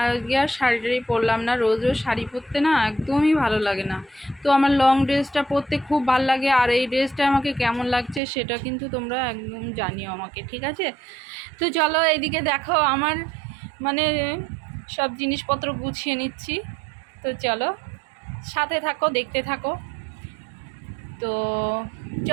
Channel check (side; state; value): left; drops out; at 8.2 s